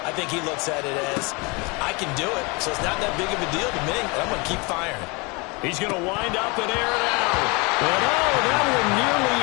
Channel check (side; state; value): right; quieter; 28.2 dB